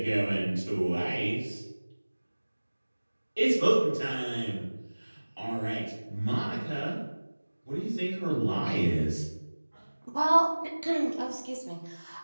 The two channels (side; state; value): both; inverted; correlation -1.00